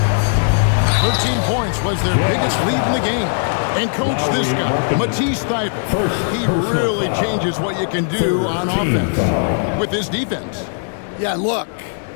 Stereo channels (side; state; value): right; silent; digital silence